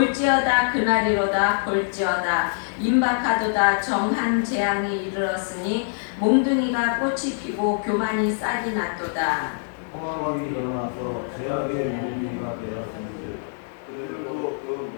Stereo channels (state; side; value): silent; right; digital silence